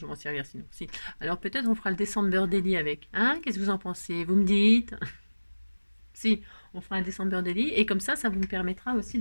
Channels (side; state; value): both; inverted; correlation -1.00